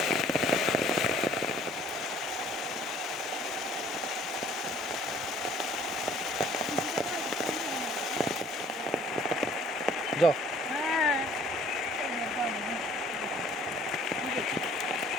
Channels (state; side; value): normal; both; correlation 0.55